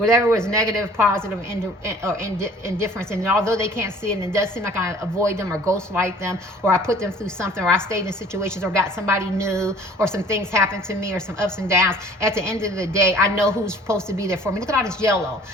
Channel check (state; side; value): normal; both; correlation 0.52